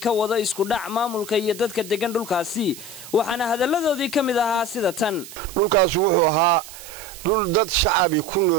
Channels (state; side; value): noise; right; hiss, 15 dB below the sound